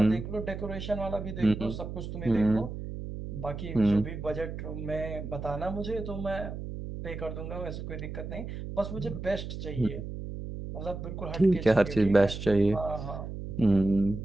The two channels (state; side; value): noise; right; hum, 7 dB below the sound